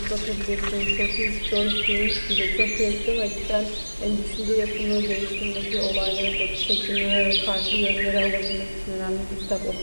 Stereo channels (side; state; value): both; inverted; correlation -1.00